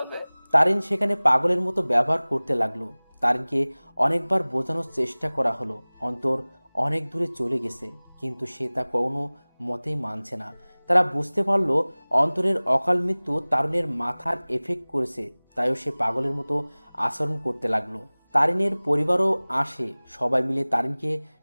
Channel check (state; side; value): inverted; both; correlation -1.00